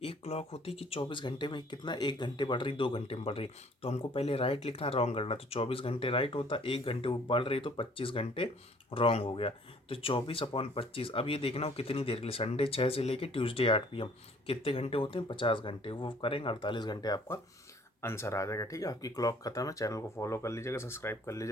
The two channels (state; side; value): normal; both; correlation 0.57